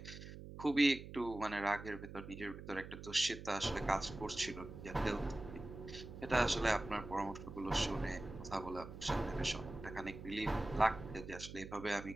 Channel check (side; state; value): right; noise; hum, 12 dB below the sound